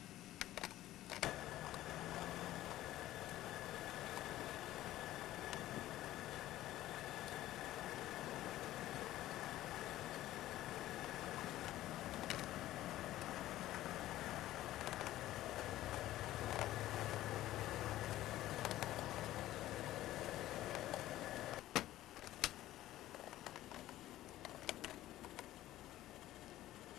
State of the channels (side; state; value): right; quieter; 14.8 dB